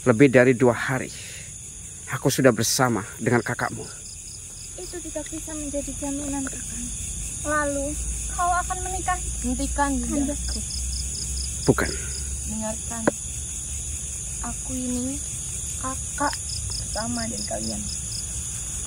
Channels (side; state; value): both; identical; correlation 1.00